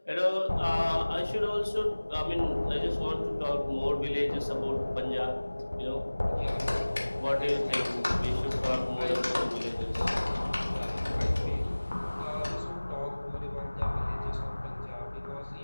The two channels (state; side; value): inverted; both; correlation -1.00